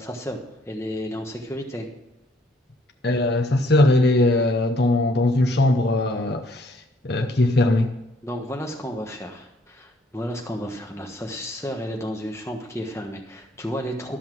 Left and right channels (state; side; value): normal; both; correlation 0.65